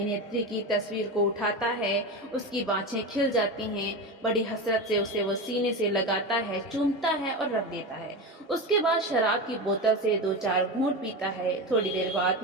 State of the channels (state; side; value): normal; both; correlation 0.21